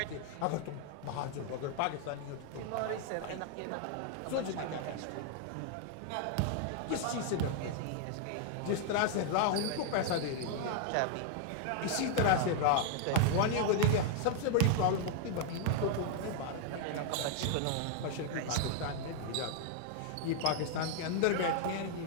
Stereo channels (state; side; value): different; both; correlation 0.00